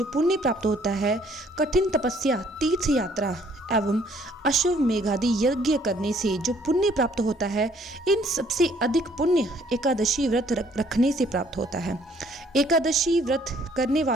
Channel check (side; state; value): both; normal; correlation 0.62